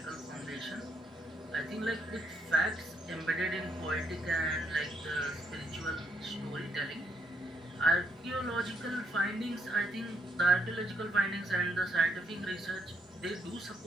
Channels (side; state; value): both; normal; correlation 0.73